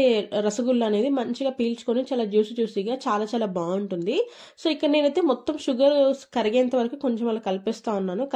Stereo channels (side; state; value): both; identical; correlation 1.00